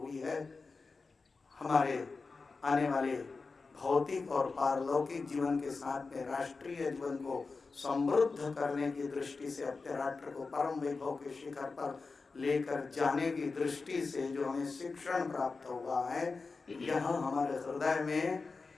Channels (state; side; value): quieter; right; 4.2 dB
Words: है। हमारे आने वाले भौतिक और पारलौकिक जीवन के साथ में राष्ट्रीय जीवन को समृद्ध करने की दृष्टि से, अपने राष्ट्र को परम वैभव के शिखर पर लेकर जाने की दृष्टि से जो हमें शिक्षण प्राप्त हुआ है, यह हमारे हृदय में